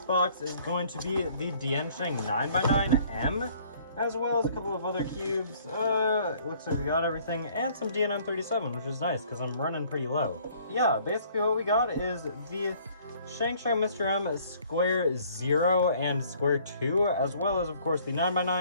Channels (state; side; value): inverted; both; correlation -0.58